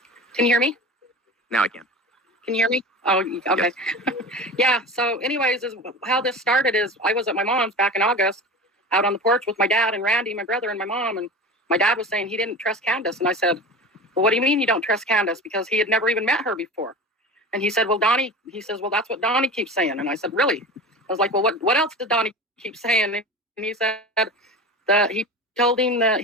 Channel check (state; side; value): normal; both; correlation 0.32